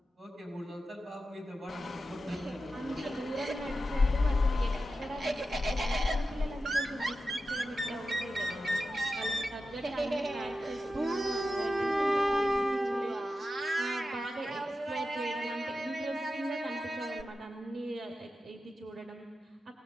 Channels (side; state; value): both; normal; correlation 0.91